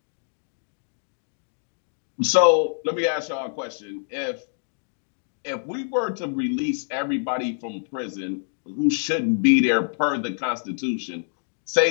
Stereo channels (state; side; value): silent; right; digital silence